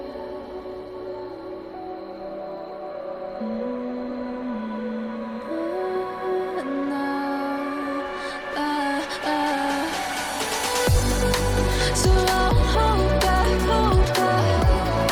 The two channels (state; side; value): identical; both; correlation 1.00